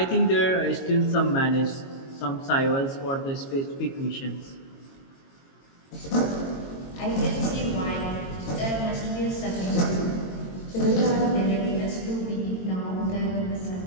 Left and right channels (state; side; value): late; right; 22 ms